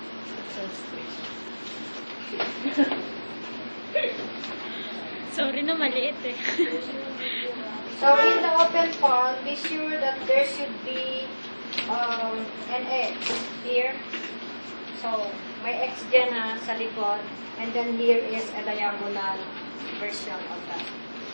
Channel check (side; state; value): both; inverted; correlation -1.00